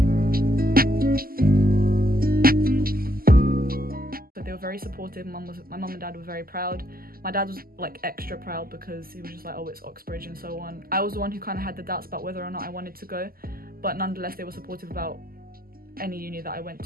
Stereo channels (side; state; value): left; late; 0.42 ms